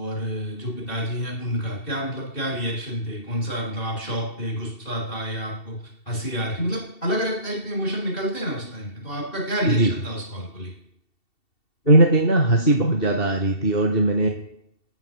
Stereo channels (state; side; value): late; right; 2.7 ms